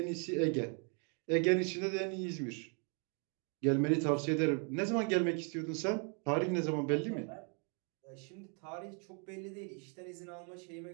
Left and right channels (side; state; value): left; quieter; 38.8 dB